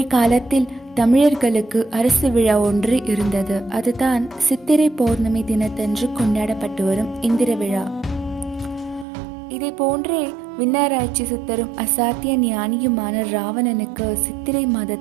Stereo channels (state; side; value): drops out; left; at 9.1 s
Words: காலத்தில் தமிழர்களுக்கு அரசு விழா ஒன்று இருந்தது. அதுதான் சித்திரை பௌர்ணமி தினத்தன்று கொண்டாடப்பட்டு வரும் இந்திர விழா. இதை போன்றே விண்ணாராய்ச்சி சித்தரும் அசாத்திய ஞானியுமான ராவணனுக்கு சித்திரை